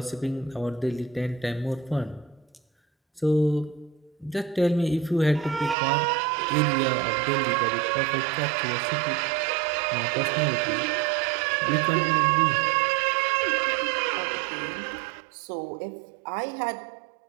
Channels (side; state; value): left; drops out; at 5.8 s